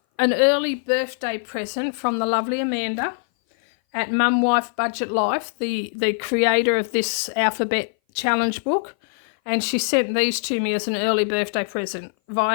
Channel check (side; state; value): right; silent; 59 dB below the other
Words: early birthday present from the lovely Amanda at Mum Wife Budget Life, the creator of this alphabet challenge book. And she sent these to me as an early birthday present